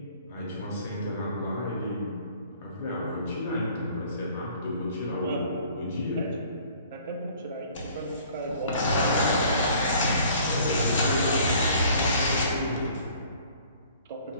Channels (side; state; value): both; inverted; correlation -0.54